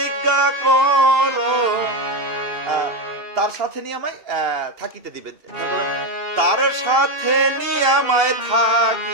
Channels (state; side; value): late; left; 2.7 ms